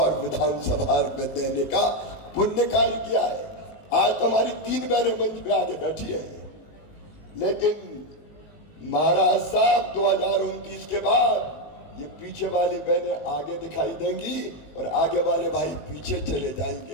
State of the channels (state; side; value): late; right; 18 ms